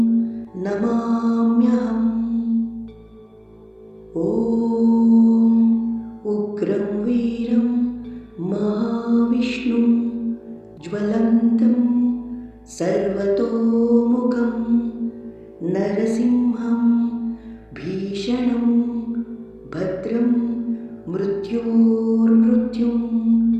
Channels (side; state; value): both; identical; correlation 1.00